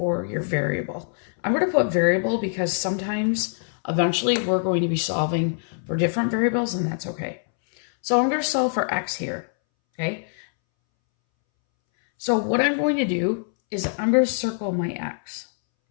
your variable. I'm going to put variable because sometimes, eventually, we're going to be solving for different variables, and that's okay. So I'm going to solve for x here, okay? So what I'm going to do is I'm going to circle my x,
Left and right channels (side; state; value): right; silent; 63 dB below the other